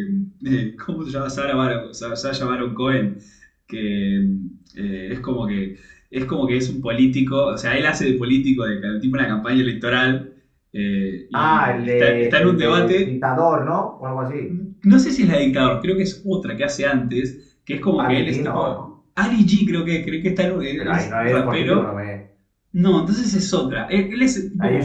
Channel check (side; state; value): both; identical; correlation 1.00